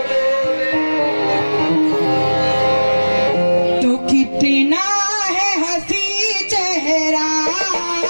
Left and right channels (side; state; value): both; inverted; correlation -1.00